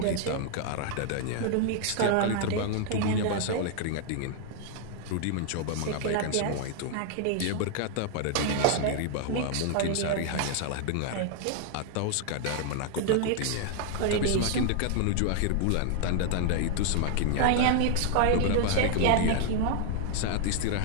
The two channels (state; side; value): different; both; correlation 0.00